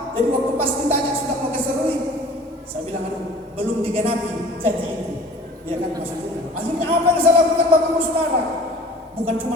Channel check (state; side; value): normal; both; correlation 0.46